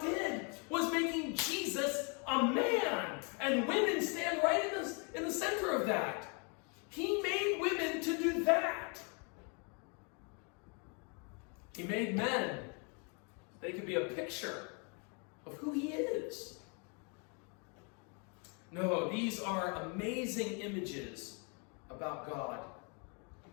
did was making Jesus a man. And women stand right in the center of that. He made women to do that. He made men. They could be a picture of who He is. No, these are amazing images about God.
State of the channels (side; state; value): right; quieter; 35.8 dB